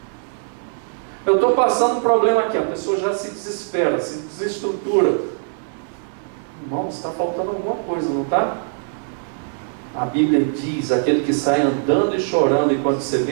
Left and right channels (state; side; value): silent; left; digital silence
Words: Eu estou passando um problema aqui, a pessoa já se desespera, se desestrutura. Irmão, está faltando alguma coisa, não está? A Bíblia diz: aquele que sai andando e chorando enquanto se